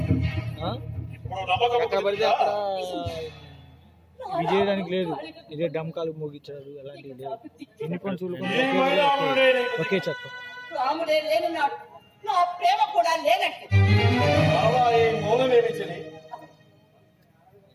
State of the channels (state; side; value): identical; both; correlation 1.00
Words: ఇప్పుడు నమ్మకం ఎక్కడ పడితే అక్కడ రాముడు ఇది చేయడానికి లేదు. ఇదే డమ్కాలు మోగించారు అలాంటివి లేదు. యూనిఫామ్ సివిల్ కోడ్ ఒకే చట్టం. రాముడే లేనున్నాడు, నా ప్రేమ కూడా లేనట్టు. బాబా, ఈ మౌనమేమి చలి.